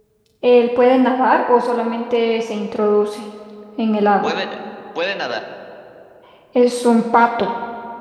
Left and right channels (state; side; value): identical; both; correlation 1.00